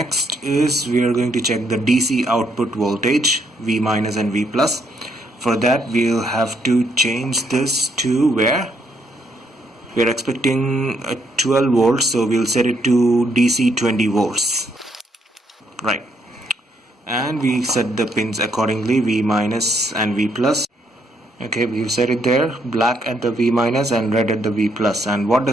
is we are going to check the DC output voltage, V minus and V plus. For that we'll have to change this to where we are expecting 12 volts, so we'll set it to DC 20 volts. Right. and we set the pins accordingly, V minus and V plus. Okay, we've set it there, black at the V minus and red at the V plus. And what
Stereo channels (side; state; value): both; normal; correlation 0.73